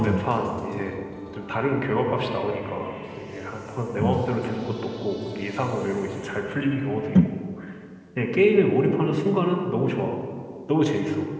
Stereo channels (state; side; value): identical; both; correlation 1.00